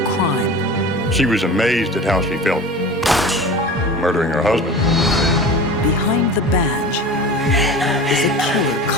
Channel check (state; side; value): normal; both; correlation 0.35